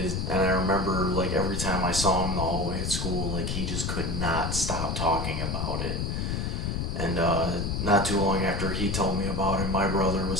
remember, like, every time I saw him in the hallway at school, like, he just could not stop talking about it. And not too long after he told me about it, my brother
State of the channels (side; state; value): left; noise; rumble, 1 dB below the sound